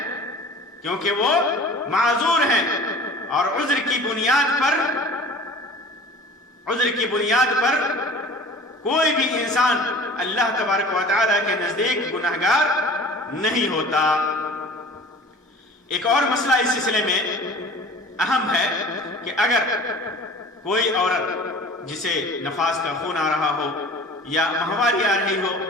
معذور ہیں. اور عذر کی بنیاد پر کوئی بھی انسان اللہ تبارک و تعالیٰ کے نزدیک گناہگار نہیں ہوتا. ایک اور مسئلہ اس سلسلے میں اہم ہے کہ اگر کوئی عورت جسے نفاس کا خون آ رہا ہو یا ماہواری آ رہی ہو،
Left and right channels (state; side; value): normal; both; correlation 0.42